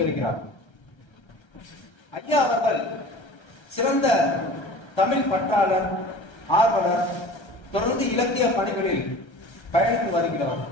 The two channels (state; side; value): late; right; 1.3 ms